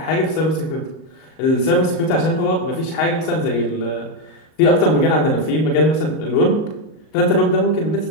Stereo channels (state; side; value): late; right; 38 ms